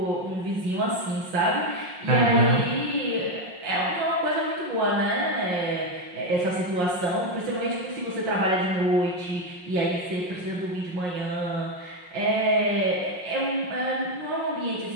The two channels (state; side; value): late; left; 5.6 ms